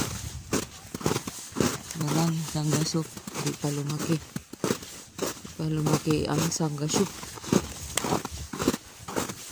Walang Changashook. Di pa lumaki. Di pa lumaki ang Changashook.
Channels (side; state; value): both; identical; correlation 1.00